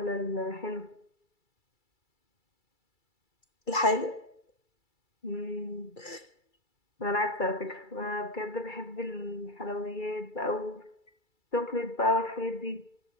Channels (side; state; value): right; late; 2.3 ms